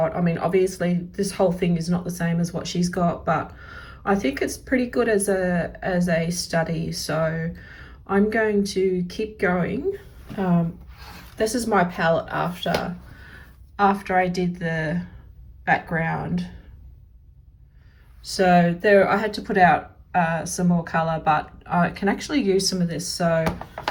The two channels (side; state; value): both; identical; correlation 1.00